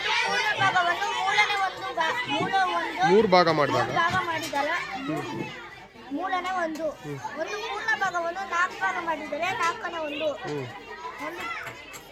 ಪೂರ್ಣ ಭಾಗವನ್ನು ಮೂರನೇ ಮೂರು ಭಾಗ ಮಾಡಿದಾಗ ಮಾಡಿದರೆ ಮೂರನೇ ಒಂದು. ಒಂದು ಪೂರ್ಣ ಭಾಗವನ್ನು 4 ಭಾಗ ಮಾಡಿದರೆ ನಾಲ್ಕನೇ ಒಂದು. ಒಂದು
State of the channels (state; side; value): identical; both; correlation 1.00